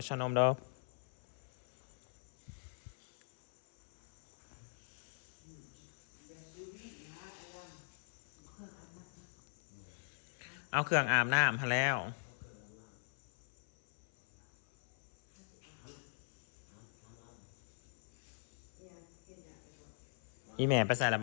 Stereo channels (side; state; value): right; silent; 50 dB below the other